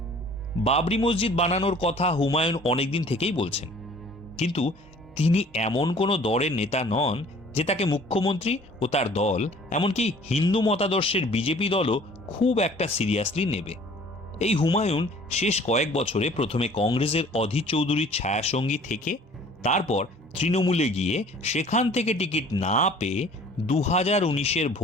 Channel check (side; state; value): both; normal; correlation 0.51